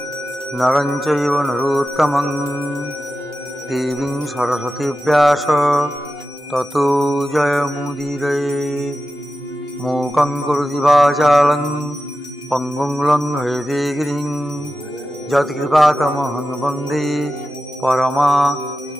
नरं चैव नरोत्तमं देवीं सरस्वतीं व्यास ततो जयमुदीरये। मूकं करोति वाचालं पङ्गुं लङ्घयते गिरिं यत्कृपातमहं वन्दे परमानन्दमाधवम्।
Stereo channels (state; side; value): normal; both; correlation 0.92